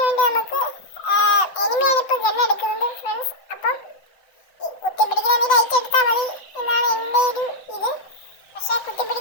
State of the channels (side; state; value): right; late; 7.8 ms